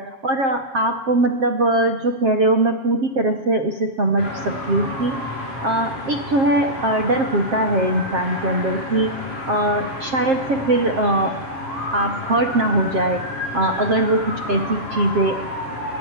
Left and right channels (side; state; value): left; late; 7.5 ms